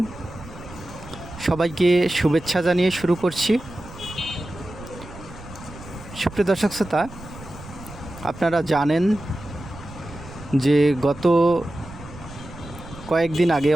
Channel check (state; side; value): noise; right; rumble, 16 dB below the sound